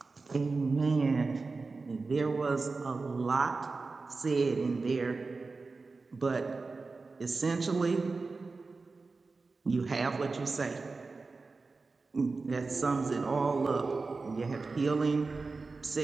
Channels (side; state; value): left; quieter; 4.0 dB